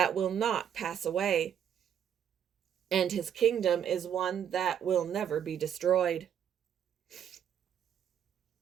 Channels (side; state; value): left; quieter; 8.9 dB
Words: will not pass away, and his kingdom is one that will never be destroyed.